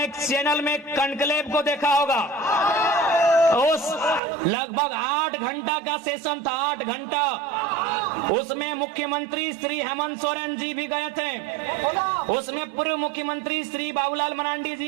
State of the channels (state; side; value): drops out; left; at 4.2 s